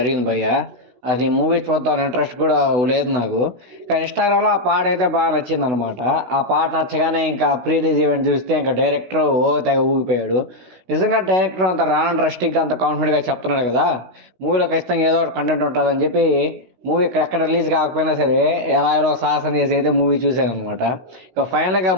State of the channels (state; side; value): late; left; 16 ms